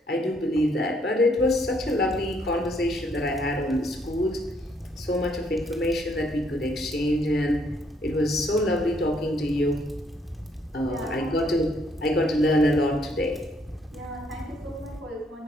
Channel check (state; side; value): normal; both; correlation 0.69